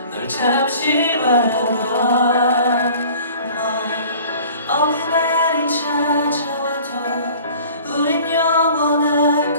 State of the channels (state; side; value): inverted; both; correlation -0.47